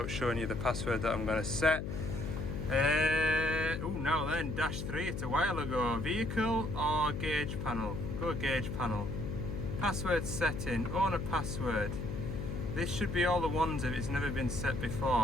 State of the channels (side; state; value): left; noise; hum, 4 dB below the sound